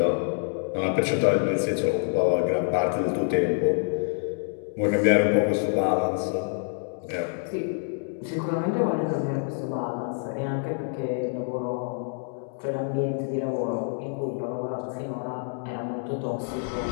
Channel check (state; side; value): silent; right; 57 dB below the other